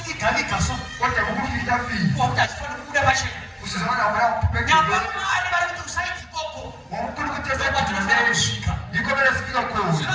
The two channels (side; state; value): both; identical; correlation 1.00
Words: kodwa kukufitafita wakuti achifanira kubuda pachena usizona waya nyamba Mwari vari kuti usaiti ikoko wamukulukutesaakusvika ndiko verasvika kuno